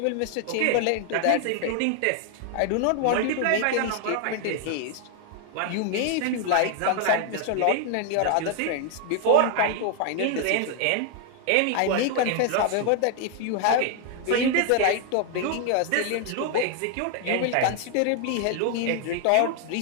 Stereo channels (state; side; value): different; both; correlation 0.00